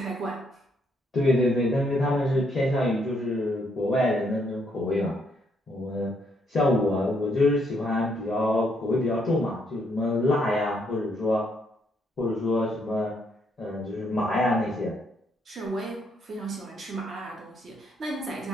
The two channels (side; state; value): both; normal; correlation 0.73